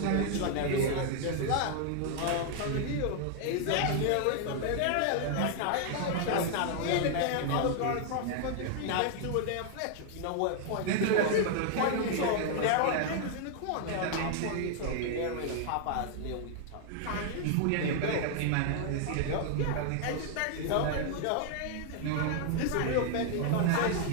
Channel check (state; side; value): different; both; correlation 0.00